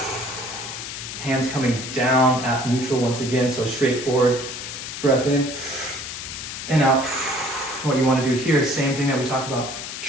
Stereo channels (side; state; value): left; noise; hiss, 8 dB below the sound